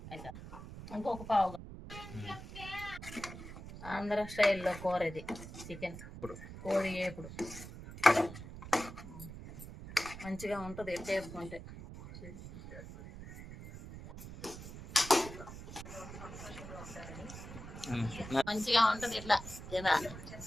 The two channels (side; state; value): right; noise; rumble, 12 dB below the sound